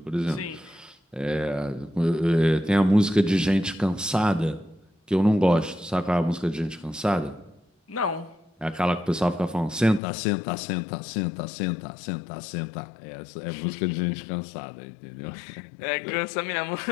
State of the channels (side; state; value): right; drops out; at 10.0 s